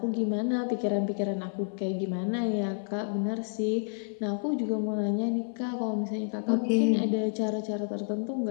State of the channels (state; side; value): silent; right; 58 dB below the other